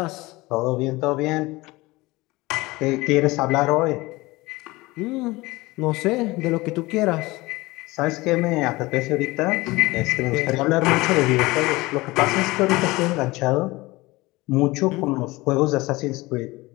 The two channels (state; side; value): quieter; right; 21.2 dB